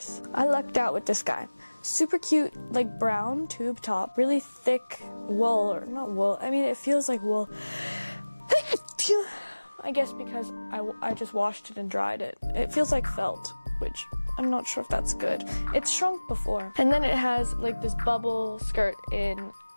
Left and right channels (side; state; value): both; inverted; correlation -1.00